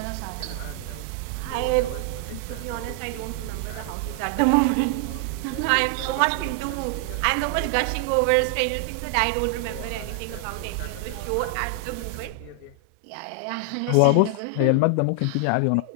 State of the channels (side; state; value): both; different; correlation 0.00